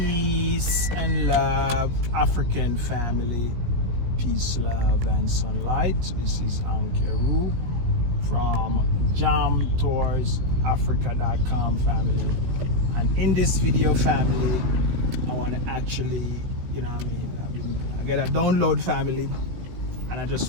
and love, African family. Peace, love, and sunlight. This is Ankeru from jamtoursafrica.com family. And in this video, family, I want to actually, I get a download family, and I just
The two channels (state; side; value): late; left; 17 ms